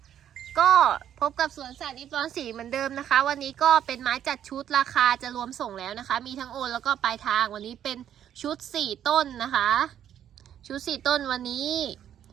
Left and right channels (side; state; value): left; quieter; 10.1 dB